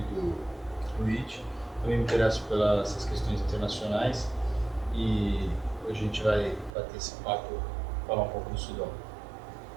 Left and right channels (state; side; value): drops out; left; at 6.7 s